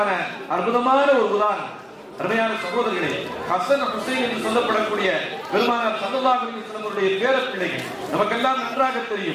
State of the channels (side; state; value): both; identical; correlation 1.00